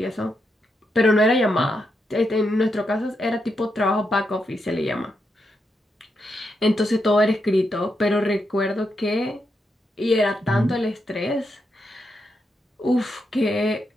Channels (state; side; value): normal; both; correlation 0.83